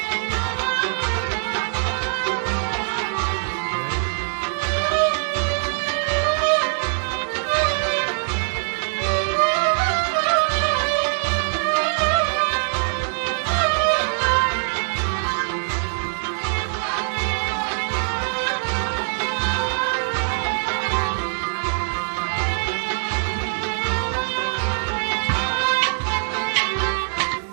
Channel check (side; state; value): left; silent; digital silence